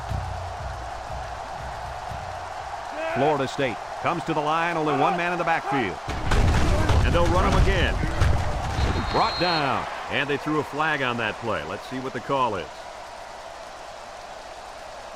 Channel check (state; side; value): identical; both; correlation 1.00